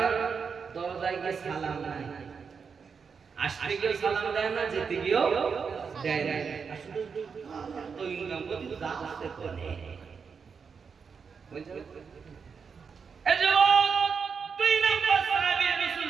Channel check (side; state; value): left; quieter; 5.9 dB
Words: দরজায় গিয়ে সালাম নাই, আসতে গিয়েও সালাম দেয় না, যেতে গিয়েও দেয় না। তো ইনকাম করতে আসতে করে দুই নাম্বার সাহাবী রাসূল